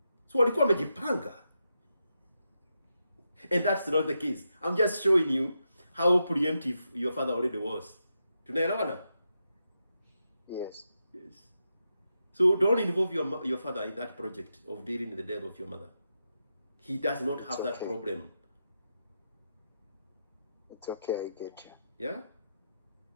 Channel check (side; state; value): both; inverted; correlation -0.86